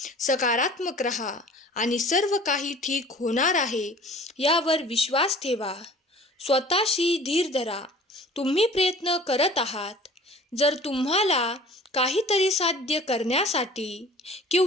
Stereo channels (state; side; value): normal; both; correlation 0.47